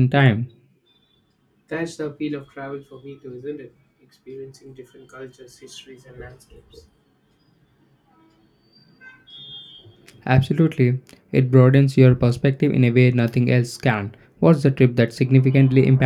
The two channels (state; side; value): identical; both; correlation 1.00